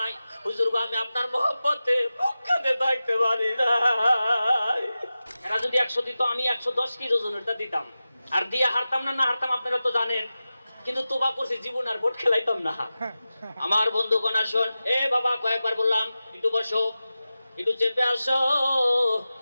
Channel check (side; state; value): both; inverted; correlation -0.95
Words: হুজুর গো, আমি আপনার মহব্বতে মক্কাতে থাকতে পারি না। এরা যদি 100 দিত, আমি 110 কেজি ওজনেরটা দিতাম, আর দিয়া হারতাম না, না হারতাম আপনারা তো জানেন। কিন্তু তোবা করছি, জীবন আর ভোট খেলাইতাম না। আমার বন্ধুগণ আসুন, এ বাবা কয়েকবার বললাম একটু বসো, একটু চেপে আসো,